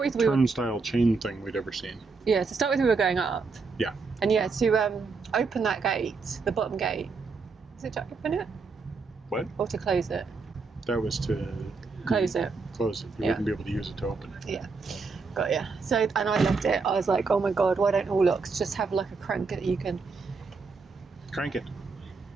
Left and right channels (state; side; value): quieter; left; 4.5 dB